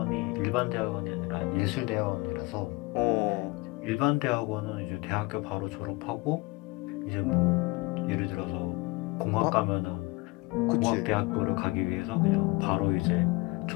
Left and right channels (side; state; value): right; quieter; 23.8 dB